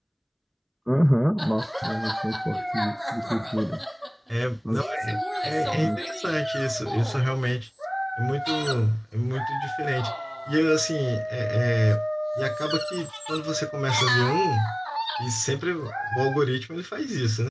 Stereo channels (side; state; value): both; identical; correlation 1.00